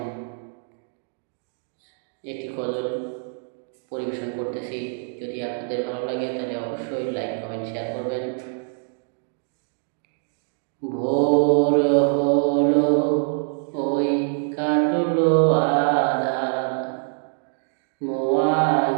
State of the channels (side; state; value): left; silent; 62 dB below the other